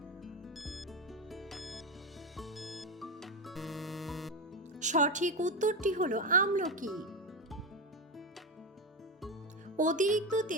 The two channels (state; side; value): normal; both; correlation 0.15